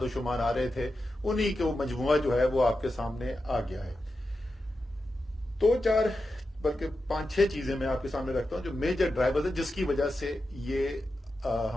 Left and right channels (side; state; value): both; normal; correlation 0.90